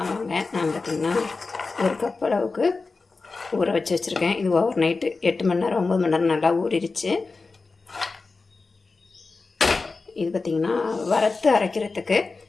நான் பார்த்திங்கன்னா ஒரு கப் அளவுக்கு ஊற வச்சு வச்சுருக்கேன். இது ஓவர் நைட்டு 8 மணி நேரம் 9 மணி நேரம் நல்லா ஊறிடுச்சு. இது பார்த்திங்கன்னா வறுத்து அரைக்கிறதுக்கு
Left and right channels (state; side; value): quieter; right; 4.0 dB